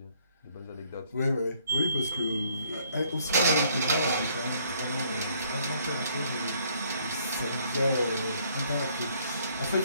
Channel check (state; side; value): inverted; both; correlation -0.65